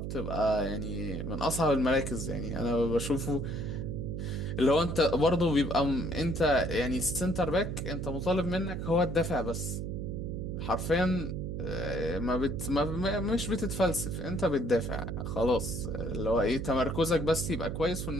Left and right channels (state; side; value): noise; right; hum, 4 dB below the sound